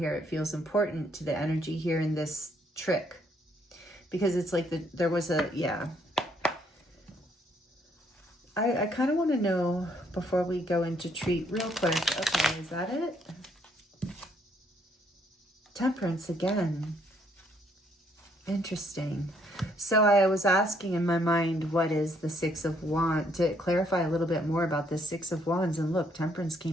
It feels important to the energy here in this trick. Because it's like there was a, yeah. I kind of want to know, before we go into treat real quick. Okay, is that it? Temperance again. Interesting. So I was asking in my mind, what is the Six of Wands? To clarify a little bit more about the Six of Wands. And look, Temperance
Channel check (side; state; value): both; normal; correlation 0.69